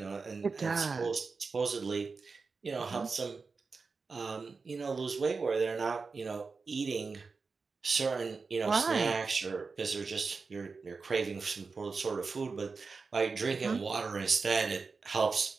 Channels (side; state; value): left; quieter; 4.6 dB